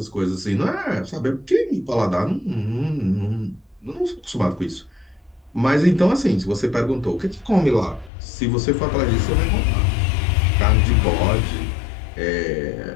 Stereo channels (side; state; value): right; drops out; at 8.1 s